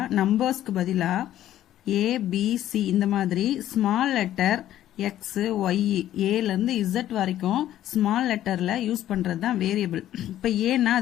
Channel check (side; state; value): right; quieter; 12.5 dB